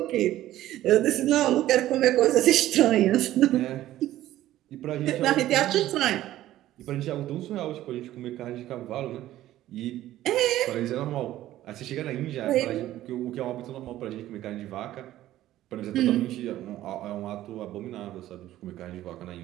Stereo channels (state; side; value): quieter; left; 14.1 dB